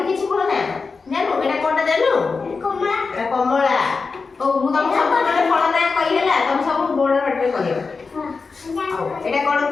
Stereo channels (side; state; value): right; quieter; 4.6 dB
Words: କିଛି ଫଳ ନା? ଜାଣିଛୁ ଏଟା କୋଉଟା ଜାଣିଛୁ? ଏଟା କମଳା। ହଉ ମୁଁ ତମକୁ ସବୁ ଗୋଟେ ଫଳ ନାଁ କହି ହେଲା ତମେ ସବୁ ବୋର୍ଡ ପାଟିରେ କହିବ। ହଉ ଏଟା କଣ